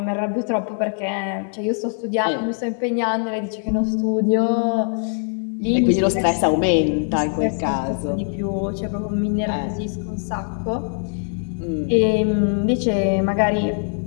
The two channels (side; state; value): right; silent; 59 dB below the other